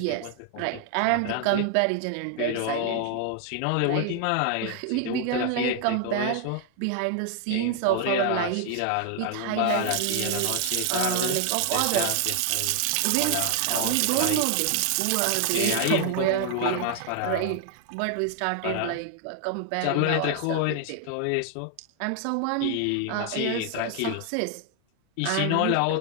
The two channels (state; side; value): different; both; correlation 0.00